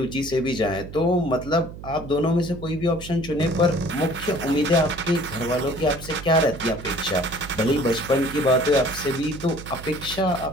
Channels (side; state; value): right; noise; hum, 13 dB below the sound